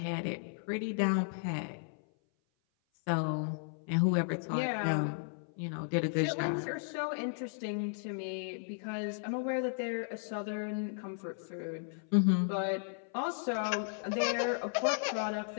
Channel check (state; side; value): silent; right; 55 dB below the other